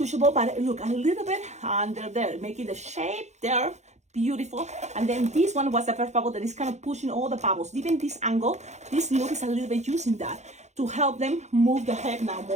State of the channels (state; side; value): late; left; 0.33 ms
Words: but look, a little bit under there, making the shape there beautiful. And then this one was the first bubble that is kind of pushing all the bubbles. Even this angle, this look is a little bit using that to help them move the head now